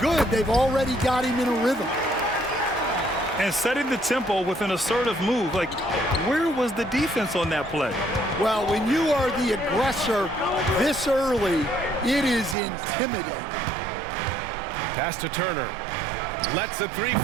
they've already got him in a rhythm. And setting the tempo with an assertive move. Like, where was the defense on that play? Well, when you are the aggressor this early, it is intimidating. Pass to Turner. Lets the three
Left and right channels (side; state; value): left; drops out; at 12.6 s